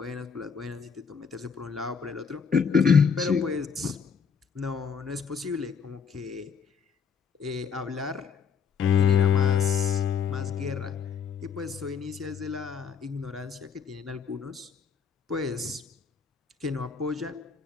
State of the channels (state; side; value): quieter; right; 6.4 dB